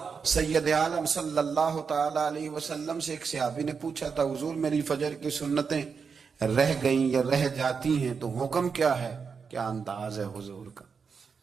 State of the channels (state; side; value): quieter; left; 5.7 dB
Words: سید عالم صلی اللہ تعالی علیہ وسلم سے ایک صحابی نے پوچھا تھا، حضور میری فجر کی سنتیں رہ گئیں یا رہ جاتی ہیں تو حکم کیا ہے؟ کیا انداز ہے حضور کا؟